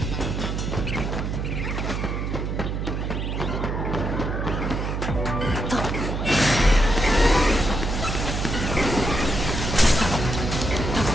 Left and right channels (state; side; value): noise; right; hum, 2 dB below the sound